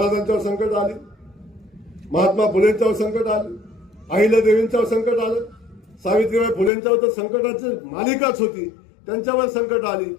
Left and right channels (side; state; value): right; drops out; at 6.7 s